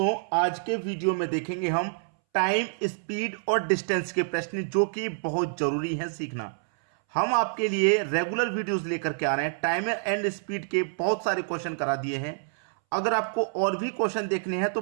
आज के वीडियो में देखेंगे हम टाइम, स्पीड और डिस्टेंस के प्रश्न जो कि बहुत जरूरी हैं सीखना। हम आपके लिए रेगुलर वीडियोस लेकर के आ रहे हैं। टाइम एंड स्पीड के बहुत सारे क्वेश्चन करा दिए हैं। अगर आपको और भी क्वेश्चन देखने हैं तो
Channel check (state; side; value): silent; left; 60 dB below the other